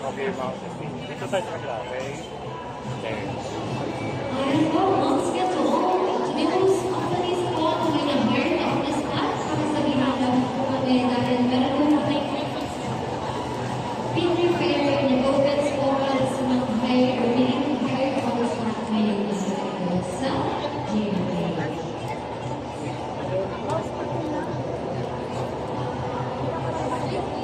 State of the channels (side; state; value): left; noise; hum, 29 dB below the sound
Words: Okay, mga safety. Dito tayo sa kanila, okay? Okay.